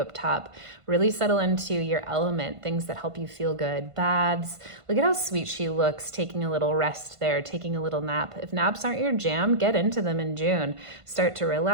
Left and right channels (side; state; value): left; late; 1.5 ms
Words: top. Really settle into your element, things that help you feel good. Baths. Look at how sweet she looks, taking a little rest there, taking a little nap. If naps aren't your jam, get into them in June. Start to